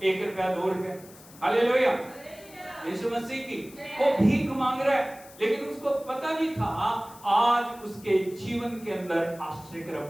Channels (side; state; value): left; noise; hiss, 21 dB below the sound